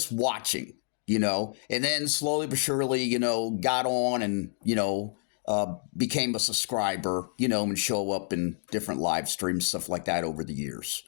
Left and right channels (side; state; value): right; silent; digital silence